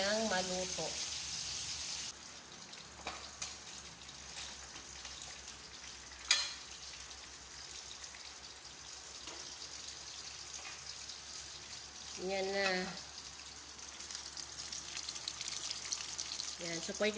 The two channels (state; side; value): identical; both; correlation 1.00